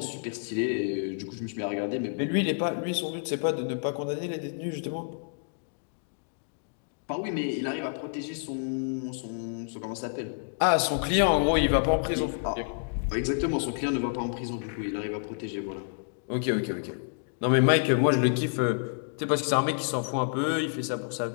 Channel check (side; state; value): right; silent; digital silence